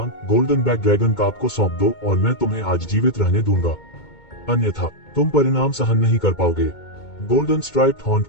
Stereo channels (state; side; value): late; right; 2.2 ms